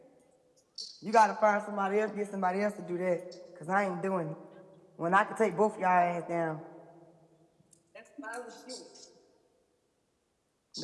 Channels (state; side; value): identical; both; correlation 1.00